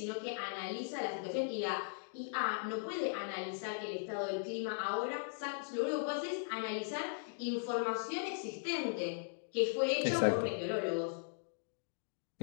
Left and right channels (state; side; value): silent; right; digital silence